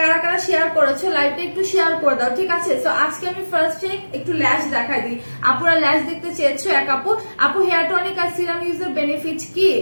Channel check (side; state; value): both; inverted; correlation -1.00